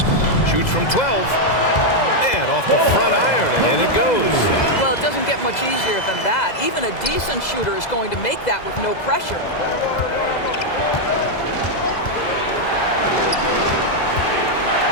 Shoots from 12. And off the front iron, and in it goes. Well, it doesn't get much easier than that. Even a decent shooter is going to make that with no pressure.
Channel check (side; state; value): right; late; 2.0 ms